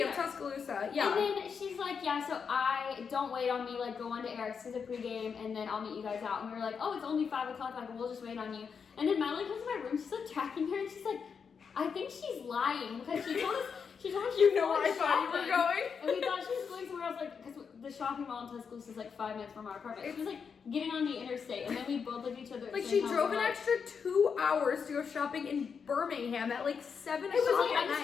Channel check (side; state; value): right; quieter; 6.2 dB